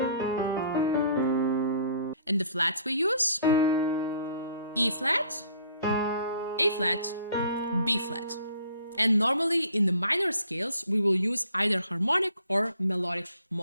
And the flats we use: E flat, A flat, B flat. And normally in the minor scales, we will use either harmonic or melodic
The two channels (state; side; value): inverted; both; correlation -0.57